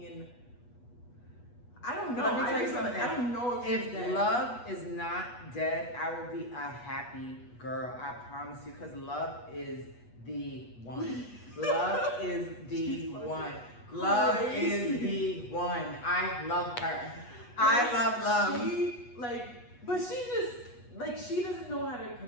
and I don't know. Let me tell you something. I don't know if she's If dead. Love is not dead, I will be a happy girl. I promise you, because Love is the one. Love is the She's one. Love crazy. is the one. I love her. I love Love. She but she just she doesn't know how to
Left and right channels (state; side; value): late; right; 8.2 ms